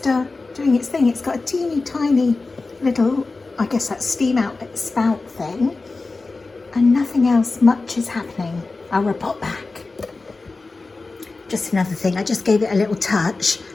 doing its thing. It's got a teeny tiny little, I guess that's steam outlet spout thing. And nothing else much is happening. I'll report back. Just another thing, I just gave it a little touch.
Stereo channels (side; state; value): right; quieter; 3.7 dB